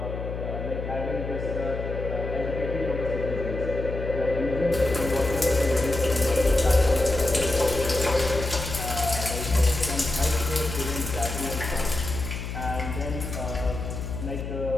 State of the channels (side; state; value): left; noise; hum, 6 dB below the sound